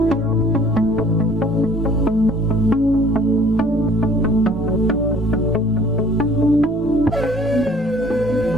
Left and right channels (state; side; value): normal; both; correlation 0.54